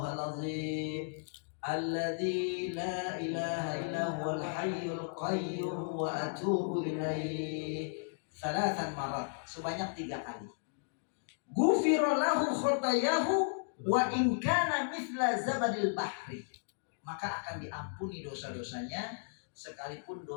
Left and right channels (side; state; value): right; silent; digital silence